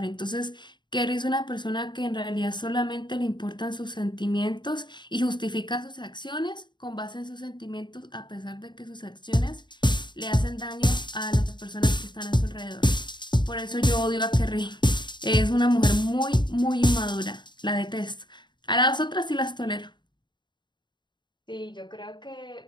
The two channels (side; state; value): right; late; 0.22 ms